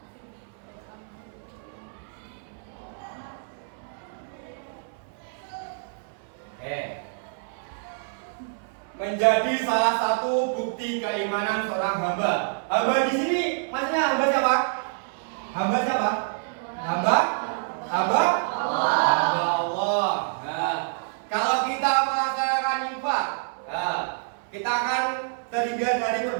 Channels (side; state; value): left; silent; 60 dB below the other